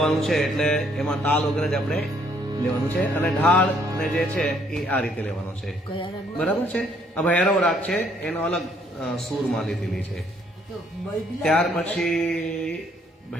છે એટલે એમાં તાલ વગર જ આપણે લેવાનું છે. અને ઢાળ ને જે છે એ આ રીતે લેવાનો છે, બરાબર છે. આ ભૈરવ રાગ છે એનો અલગ સૂરમાં લીધેલી છે. ત્યાર પછી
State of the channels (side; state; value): both; normal; correlation 0.66